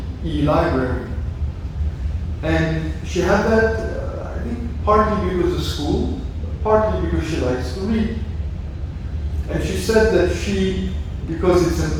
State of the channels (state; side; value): identical; both; correlation 1.00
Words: the e-library. And she had that, I think, partly because of school, partly because she likes to read. And she said that because it's